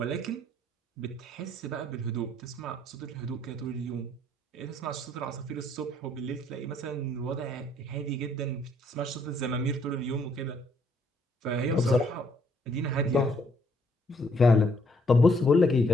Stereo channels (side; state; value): both; normal; correlation 0.68